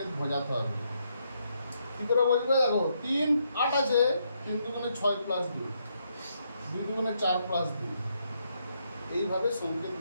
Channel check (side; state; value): both; inverted; correlation -0.77